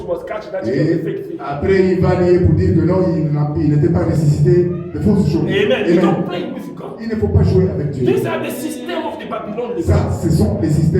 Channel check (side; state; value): both; identical; correlation 1.00